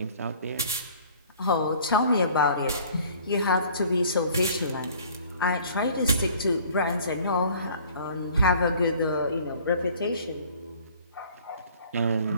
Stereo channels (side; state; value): both; inverted; correlation -0.52